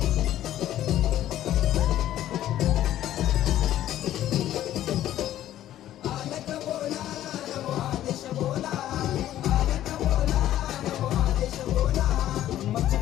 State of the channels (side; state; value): right; quieter; 12.8 dB